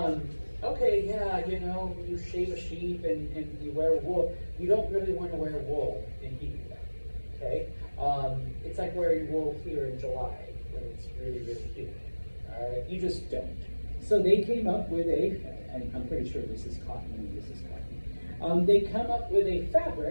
yeah, you know, you shave a sheep and you wear wool. You don't really want to wear wool in Hebrew, okay? It's like wearing wool here in July when it's really, really humid, all right? You just don't. So they came up with and I'm pretty sure this is cotton and this is cotton. They come up with a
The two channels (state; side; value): inverted; both; correlation -1.00